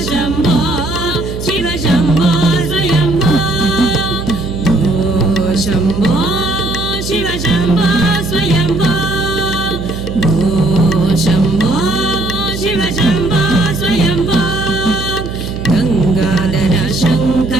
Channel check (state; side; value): noise; right; hum, 7 dB below the sound